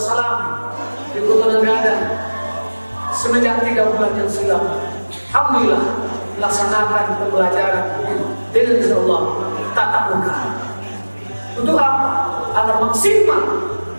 di Kota Negara semenjak 3 bulan yang silam, alhamdulillah melaksanakan pembelajaran dengan insyaallah tatap muka. Untuk apa? Agar maksimal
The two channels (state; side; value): inverted; both; correlation -1.00